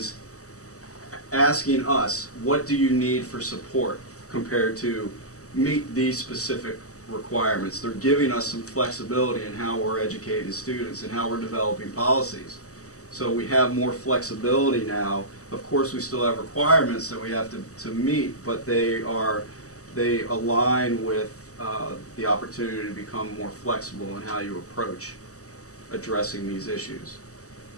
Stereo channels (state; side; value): late; right; 0.66 ms